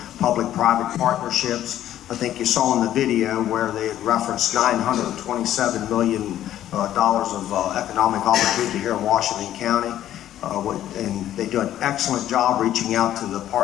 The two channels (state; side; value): quieter; right; 12.2 dB